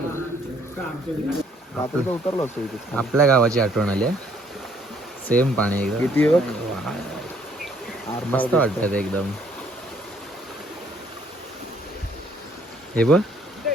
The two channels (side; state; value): both; normal; correlation 0.64